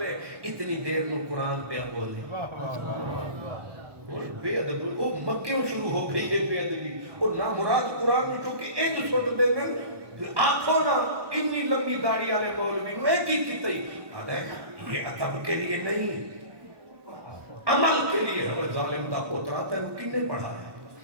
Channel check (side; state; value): left; late; 1.2 ms